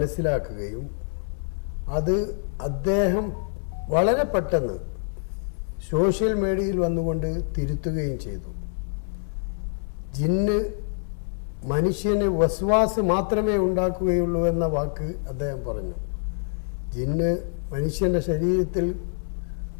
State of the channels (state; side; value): silent; right; digital silence